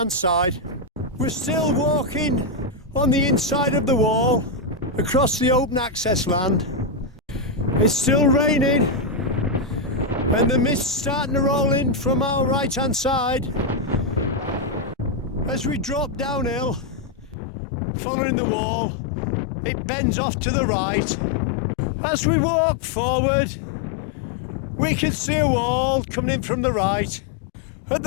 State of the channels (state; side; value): drops out; right; at 17.4 s